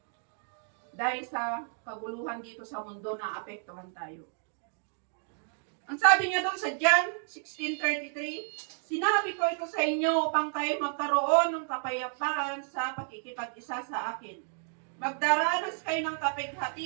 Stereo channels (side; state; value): left; silent; 57 dB below the other